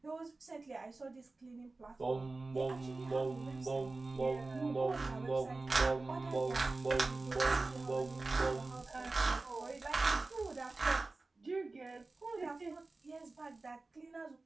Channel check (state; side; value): quieter; left; 3.4 dB